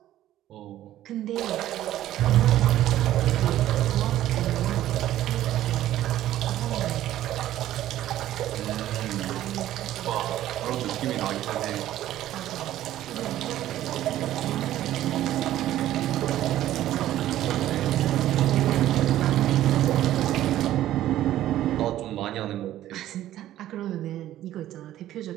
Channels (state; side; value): quieter; left; 13.3 dB